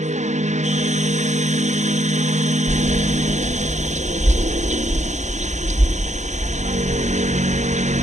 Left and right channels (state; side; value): late; left; 0.34 ms